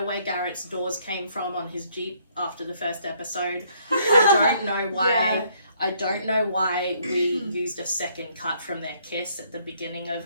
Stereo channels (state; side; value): inverted; both; correlation -0.67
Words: where Garrett's doors came from on his Jeep after the first episode. I don't know why. Yeah. I don't know why we used a second cut from their kiss at the beginning